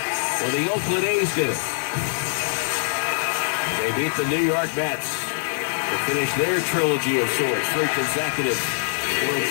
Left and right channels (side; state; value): right; silent; 59 dB below the other